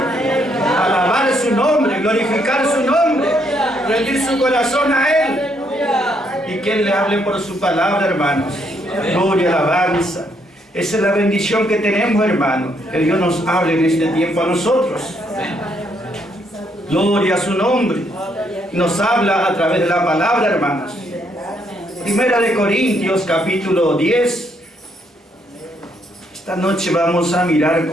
alabar su nombre, glorificar su nombre, rendir su corazón a Él. Y que Él le hable por su palabra, hermanos. Gloria, alabanza. Esa es la bendición que tenemos, hermanos. Que Dios nos hable en este tiempo a nosotros. Gloria a su nombre. Nos habla a través de la palabra, hermanos. Primera de Corintios, capítulo 10. Esta noche vamos a mirar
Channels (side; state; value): both; normal; correlation 0.73